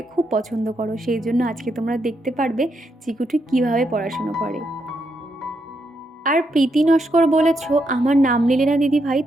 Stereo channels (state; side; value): normal; both; correlation 0.80